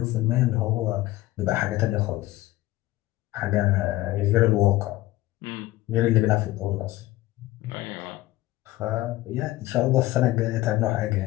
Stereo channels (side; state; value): right; quieter; 17.0 dB